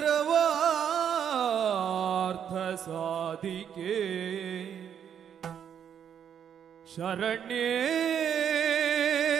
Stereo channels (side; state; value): left; quieter; 8.6 dB